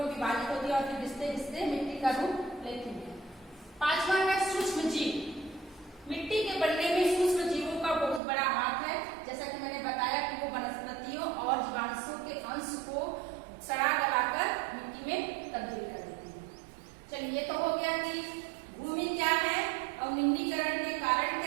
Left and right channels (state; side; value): drops out; left; at 8.2 s